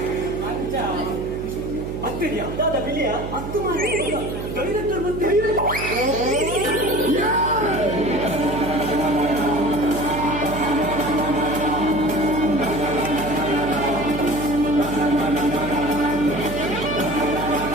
ಹತ್ತಿದ್ಯಾ ದಾದಾ ಬಿಳಿಯ ಹತ್ತು ಮಾಡಿ ಡೈರೆಕ್ಟರ್ ಮತ್ತೆ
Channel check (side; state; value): right; noise; hum, 8 dB below the sound